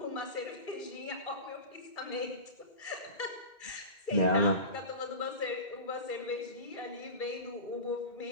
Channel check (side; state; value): right; late; 2.1 ms